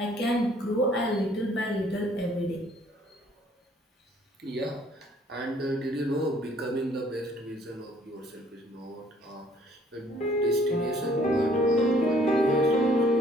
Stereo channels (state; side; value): normal; both; correlation 0.60